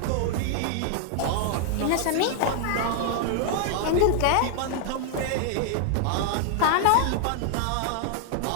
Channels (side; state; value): both; different; correlation 0.00